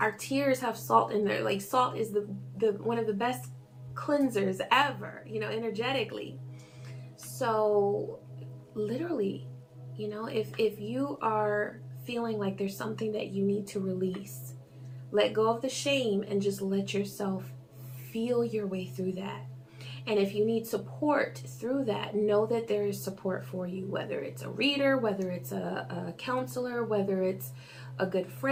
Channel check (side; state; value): both; identical; correlation 1.00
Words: Our tears have salt in there. Like salt is the one of the best cleansers ever, you know, energetically. So literally, you know, if you are feeling like there's something that you need to release, let go of the shame and just let yourself feel your way through that. And if you need support through that, know that there is support for you, whether it's a reader, whether it's a counselor, whether it's a good